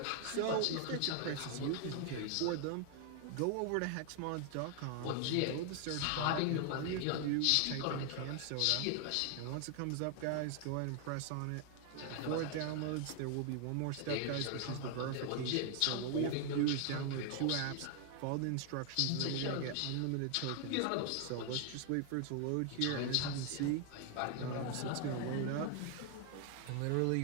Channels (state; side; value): different; both; correlation 0.00